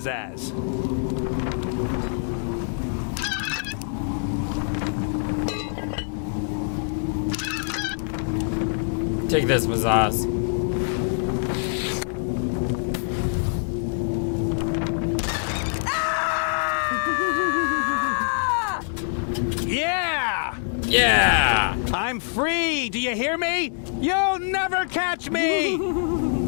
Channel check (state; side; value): silent; right; digital silence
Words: Take this, Mazaz. Yeah! Yeah! I'm free! Do you hear me? You'll never catch me!